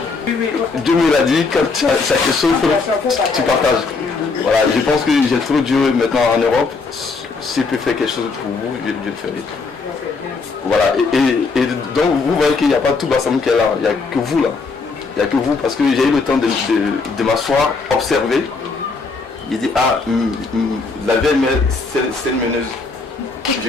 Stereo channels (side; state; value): right; quieter; 4.2 dB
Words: Dieu me l'a dit, quand tu as quelque chose, tu partages. Voilà, je pense que j'ai trop Dieu maintenant en Europe. Si je peux faire quelque chose pour vous, je le ferai. Voilà, et donc vous voyez qu'il n'y a pas tout Bassam qui est là, il n'y a que vous là. Il n'y a que vous parce que j'ai eu le temps de m'asseoir, observer. Il dit, ah, la VML, c'est une meneuse. Je